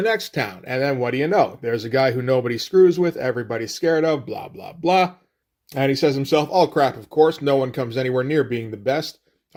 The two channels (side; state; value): both; identical; correlation 1.00